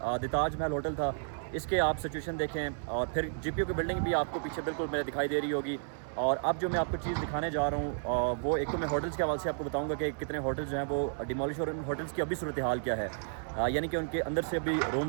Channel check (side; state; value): left; silent; 56 dB below the other